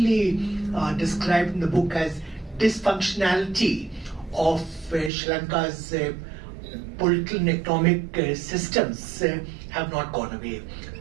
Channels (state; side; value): drops out; left; at 5.1 s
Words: described in the book as dysfunctionality of Sri Lanka's political and economic systems have not gone away.